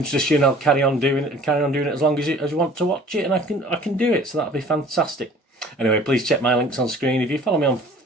you, and I'll carry on doing it as long as you want to watch it, and I can do it, so that'll be fantastic. Anyway, please check my links on screen. If you follow me on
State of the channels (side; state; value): both; normal; correlation 0.49